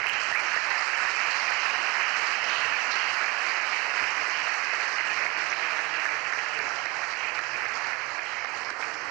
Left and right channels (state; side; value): quieter; left; 25.9 dB